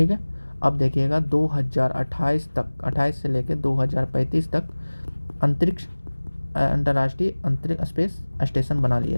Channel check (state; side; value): inverted; both; correlation -1.00